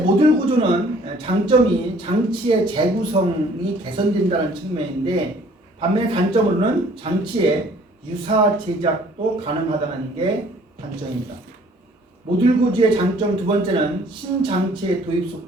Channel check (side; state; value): both; normal; correlation 0.57